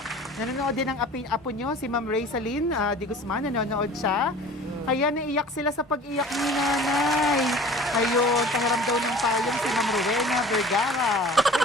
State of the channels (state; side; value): normal; both; correlation 0.44